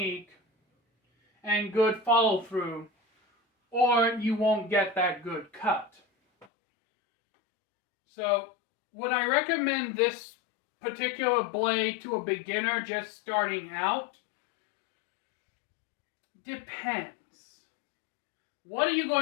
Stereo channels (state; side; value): drops out; right; at 6.5 s